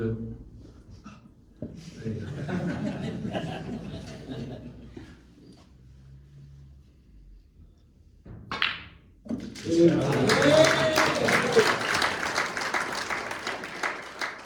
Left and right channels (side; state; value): both; identical; correlation 1.00